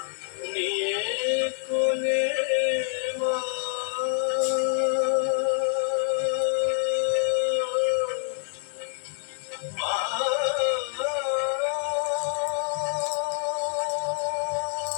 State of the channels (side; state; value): right; silent; 60 dB below the other